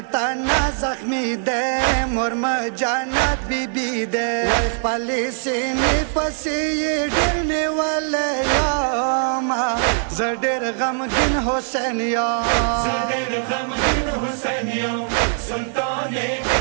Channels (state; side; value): silent; left; 57 dB below the other